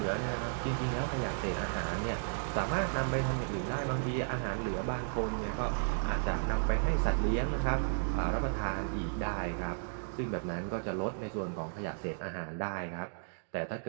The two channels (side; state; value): left; silent; digital silence